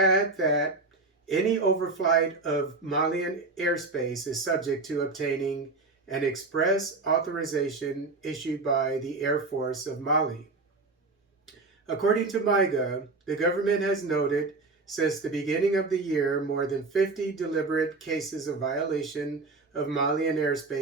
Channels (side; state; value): left; quieter; 3.6 dB